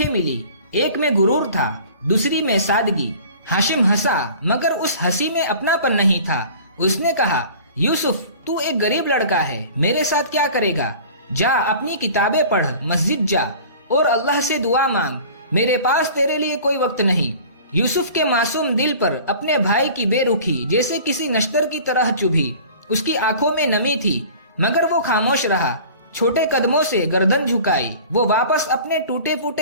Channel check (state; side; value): inverted; both; correlation -0.44